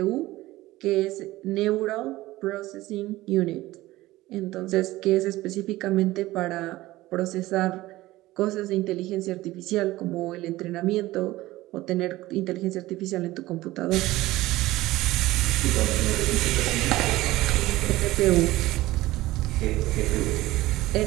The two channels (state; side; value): quieter; left; 17.6 dB